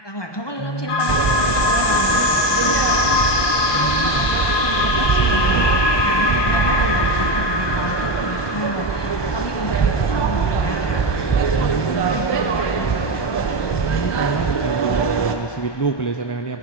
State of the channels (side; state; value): right; late; 1.2 ms